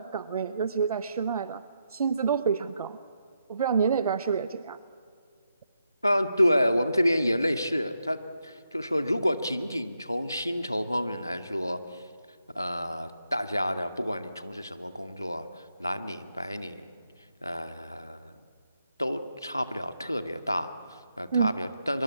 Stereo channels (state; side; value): inverted; both; correlation -0.83